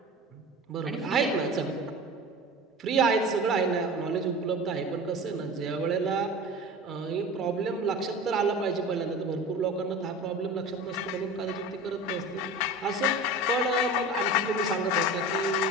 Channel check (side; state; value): both; normal; correlation 0.34